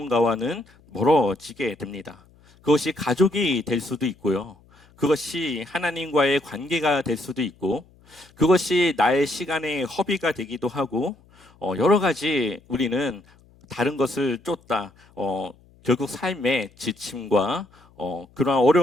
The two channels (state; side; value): noise; left; hum, 29 dB below the sound